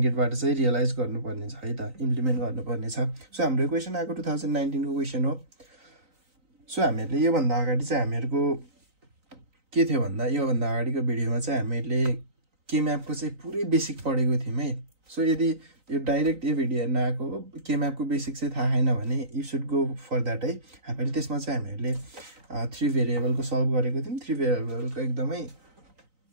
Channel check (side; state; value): left; late; 3.9 ms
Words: गेटबाट चाहिँ रियलाइज गर्नुपर्ने छ है त, इम्प्लिमेन्ट गर्नुपर्ने छ। सो हाम्रो क्वेशन आको 2019 को क्वेशन हो। सो हामीले यो भन्दा अगाडि चाहिँ हामीहरुको के थियो भन्दा यो भन्दा अगाडिको भिडियोमा चाहिँ हामीले के म्यापको चाहिँ पुरै बेसिक पढेको थियौं है। सो यदि यो डाइरेक्ट यो भिडियो हेर्न आको के म्यापको बेसिक चाहिँ थाहा छैन भने you should go for that है। हामीले त्यसमा चाहिँ हामीले 3 भेरिएबलको सल्भ गरेको थियौं। 3 भेरिएबलको एकदमै